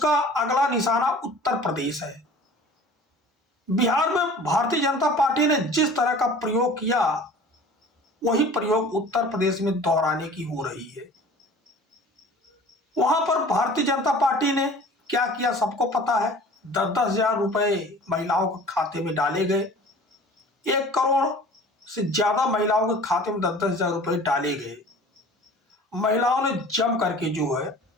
अगला निशाना उत्तर प्रदेश है। बिहार में भारतीय जनता पार्टी ने जिस तरह का प्रयोग किया, वही प्रयोग उत्तर प्रदेश में दोहराने की हो रही है। वहां पर भारतीय जनता पार्टी ने क्या किया सबको पता है। 10-10 हजार रुपए महिलाओं के खाते में डाले गए। 1 करोड़ से ज्यादा महिलाओं के खाते में 10-10 हजार रुपए डाले गए। महिलाओं ने जम करके जो है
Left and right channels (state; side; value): normal; both; correlation 0.44